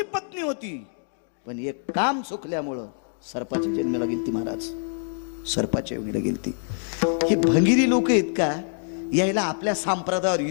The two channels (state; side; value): silent; right; digital silence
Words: पत्नी होती, पण एक काम चुकल्यामुळं सर्पाच्या जन्माला गेलती. महाराज सर्पाच्या योनीला गेलती. हे भंगिरी लोक आहेत का, यायला आपल्या संप्रदायावर